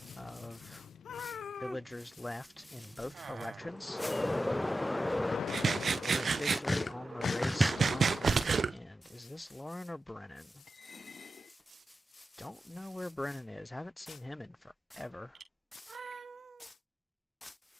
of villagers left in both elections. We're officially on the race. And is this Lauren or Brennan? Don't know where Brennan is. Haven't seen him in forever.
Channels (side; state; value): both; normal; correlation 0.92